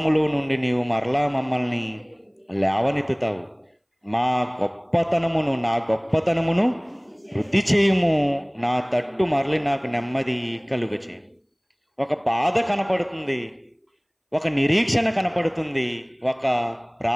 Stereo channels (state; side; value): identical; both; correlation 1.00